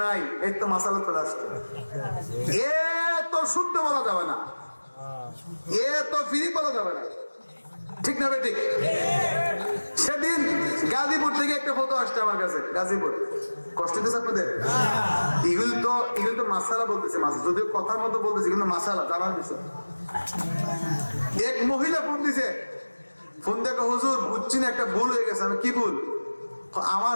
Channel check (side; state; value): both; inverted; correlation -1.00